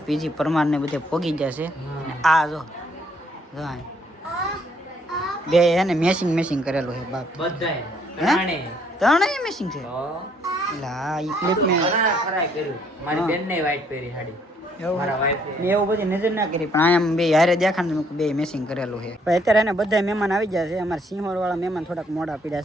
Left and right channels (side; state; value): both; normal; correlation 0.67